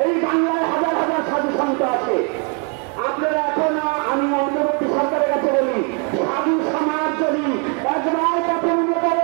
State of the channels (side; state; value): left; quieter; 37.2 dB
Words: এই বাংলায় হাজার হাজার সাধু সন্ত আছে। আপনারা এখনো, আমি অন্তর্বর্তী সরকারের কাছে বলি, সাধু সমাজ যদি একবার পথে নেমে